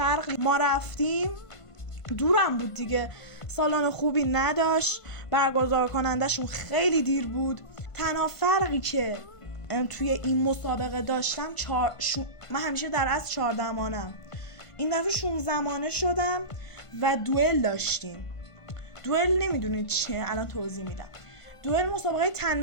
ما رفتیم دورم بود دیگه، سالن خوبی نداشت، برگزار کنندشون خیلی دیر بود. تنها فرقی که توی این مسابقه داشتم من همیشه در از 14 مانم، این دفعه 16 مانه شدم و دوئل داشتیم. دوئل نمیدونید چیه؟ الان توضیح میدم. دوئل مسابقه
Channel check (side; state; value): right; late; 1.5 ms